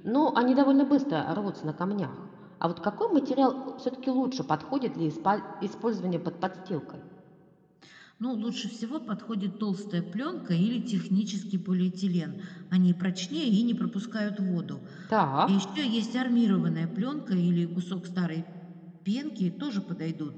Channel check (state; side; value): identical; both; correlation 1.00